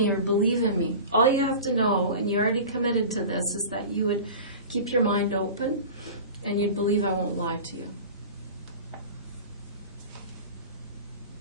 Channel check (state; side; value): inverted; both; correlation -0.35